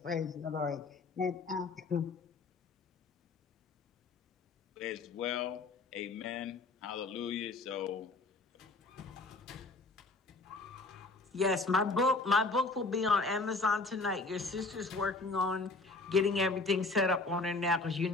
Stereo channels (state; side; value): quieter; right; 3.6 dB